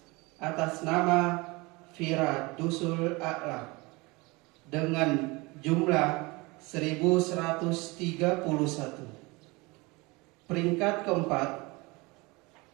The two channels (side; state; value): left; quieter; 24.8 dB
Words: atas nama Firadusul A'la dengan jumlah 1131. Peringkat ke-4